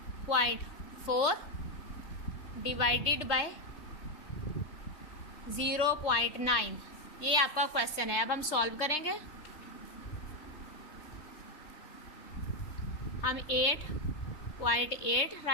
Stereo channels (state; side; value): late; right; 3.4 ms